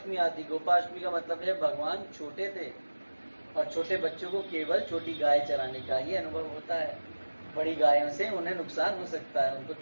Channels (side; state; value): both; inverted; correlation -1.00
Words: आती। गोपाष्टमी का मतलब है भगवान छोटे थे और छोटे बच्चों को केवल छोटी गाय चराने का ही अनुभव होता है। बड़ी गायों से उन्हें नुकसान हो सकता है, उनको